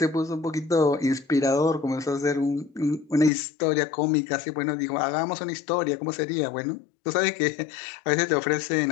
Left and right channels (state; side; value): drops out; right; at 3.3 s